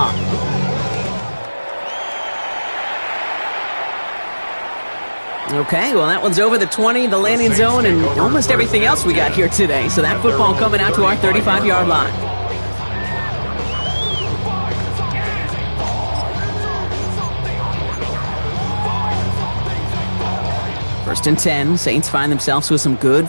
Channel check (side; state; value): both; inverted; correlation -1.00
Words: Okay, well that one's over the 20, the landing zone, and almost everything else we got here today. So that football coming out to our 35-yard line. First and 10, Saints find themselves with some good